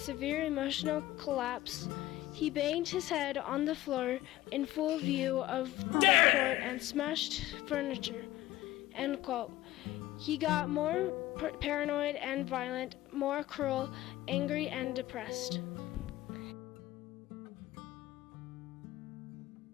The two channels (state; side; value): quieter; right; 16.0 dB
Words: emotional collapse. He banged his head on the floor in full view of the court and smashed furniture, end quote. He got more paranoid and violent, more cruel, angry, and depressed.